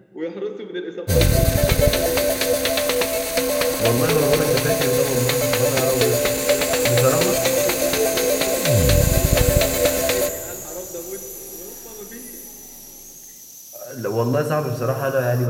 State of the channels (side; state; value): both; identical; correlation 1.00